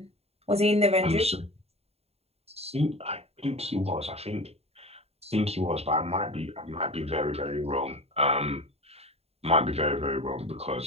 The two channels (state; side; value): late; left; 0.30 ms